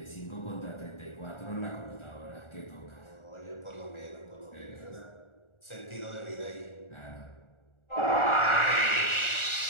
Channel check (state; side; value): late; right; 1.4 ms